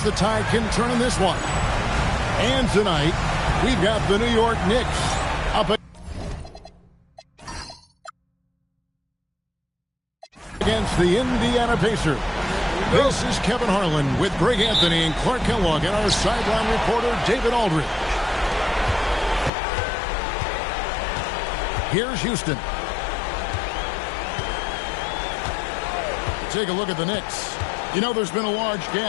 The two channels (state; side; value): drops out; right; at 19.5 s